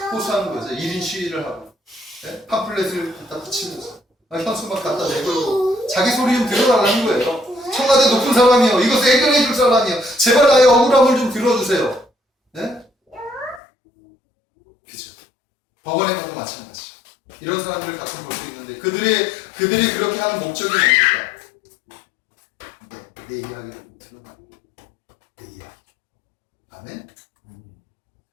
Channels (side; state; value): right; drops out; at 13.6 s